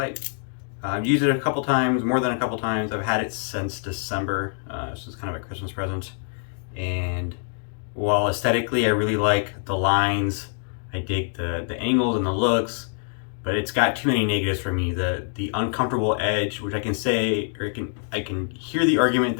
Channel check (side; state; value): right; silent; 57 dB below the other